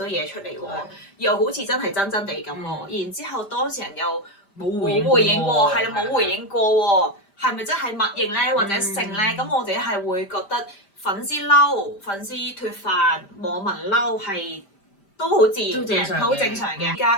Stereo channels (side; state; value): right; late; 5.0 ms